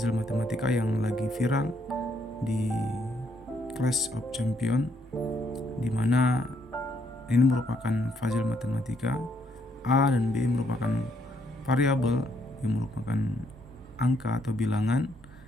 matematika yang lagi viral di Clash of Champions, di mana ini merupakan puzzle matematika. A dan B merupakan variabel yang merupakan angka atau bilangan,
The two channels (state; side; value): normal; both; correlation 0.71